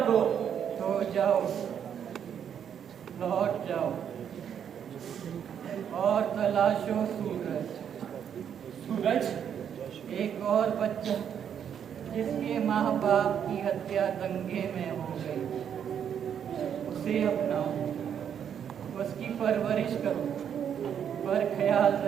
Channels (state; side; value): quieter; left; 8.5 dB